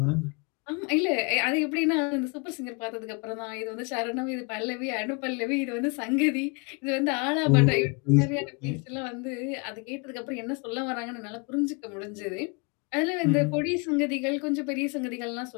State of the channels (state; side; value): quieter; right; 32.2 dB